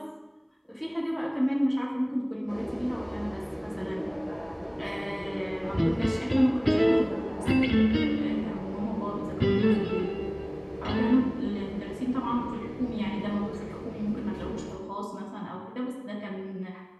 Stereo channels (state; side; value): identical; both; correlation 1.00